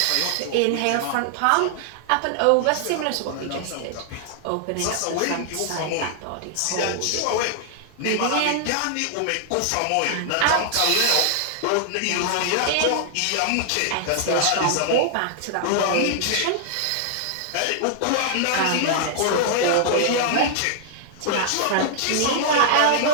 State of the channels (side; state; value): both; different; correlation -0.01